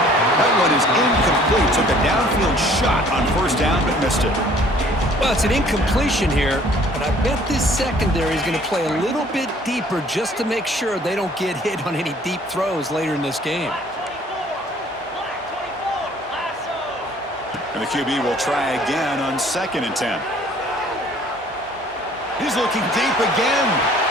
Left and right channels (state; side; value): normal; both; correlation 0.56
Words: That one is incomplete. Took a downfield shot on 1st down, but missed it. Well, it's an incompletion here, but I bet this secondary is going to play a little bit deeper just to make sure they don't get hit on any deep throws later in this game. And the QB will try again on 2nd and 10. He's looking deep again.